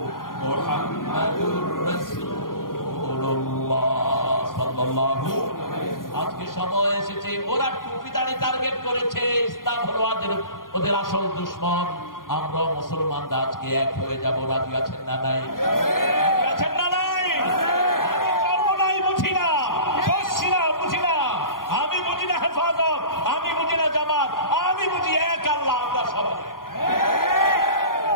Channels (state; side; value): late; right; 0.91 ms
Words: মুহাম্মাদুর রাসূলুল্লাহ সাল্লাল্লাহু। আজকে সময় এসেছে, ওরা টুপিদারি টার্গেট করেছে, ইসলাম হলো ওদের আসল দুশমন। আমরা মুসলমানরা আজকে এক হয়ে যাব, রাজি আছেন না নাই? রাজি আছেন না নাই? আমি কর্ম নাই বুঝি না, শর্ষিনা বুঝি না, আমি বুঝি না হেফাজত, আমি বুঝি না জামাত, আমি বুঝি এক আল্লাহ। আমরা সবাই